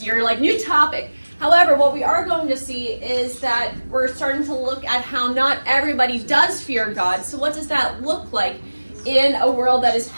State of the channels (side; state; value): both; inverted; correlation -1.00